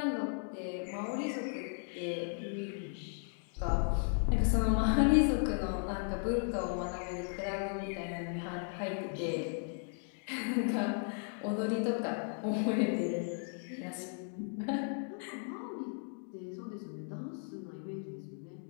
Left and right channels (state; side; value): silent; right; 54 dB below the other